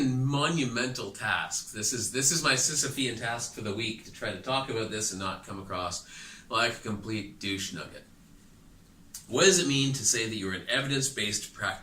monumental task. This is my Sisyphean task for the week, to try to talk about this and not come across like a complete douche nugget. What does it mean to say that you're an evidence-based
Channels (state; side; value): identical; both; correlation 1.00